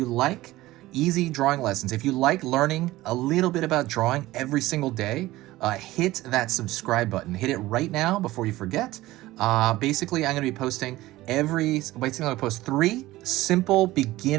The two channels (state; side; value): quieter; left; 17.3 dB